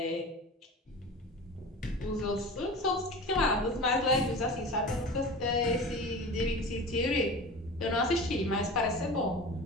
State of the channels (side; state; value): both; normal; correlation 0.34